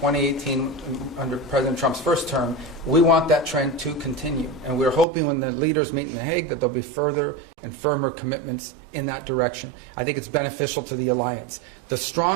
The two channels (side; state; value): left; drops out; at 5.1 s